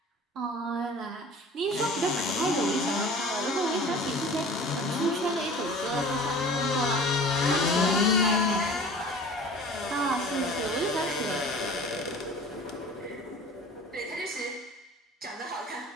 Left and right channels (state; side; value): normal; both; correlation 0.43